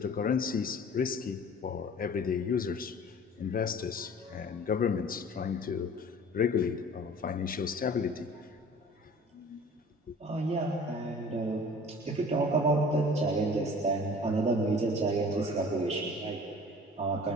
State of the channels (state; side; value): normal; both; correlation 0.45